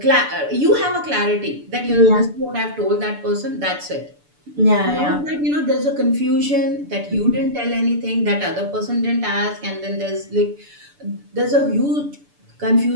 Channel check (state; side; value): late; left; 6.9 ms